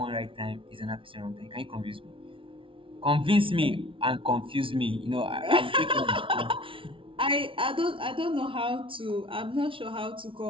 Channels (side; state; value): left; late; 0.25 ms